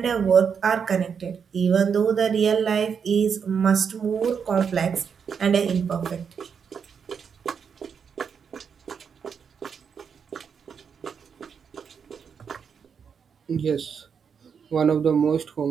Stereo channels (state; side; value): quieter; left; 6.7 dB